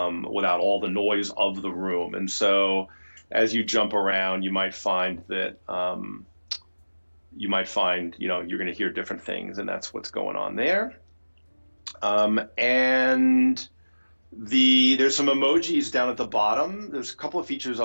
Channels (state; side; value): inverted; both; correlation -1.00